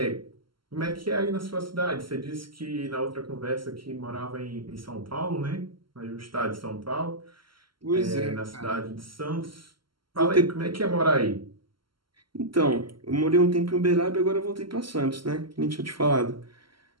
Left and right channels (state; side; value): late; left; 0.73 ms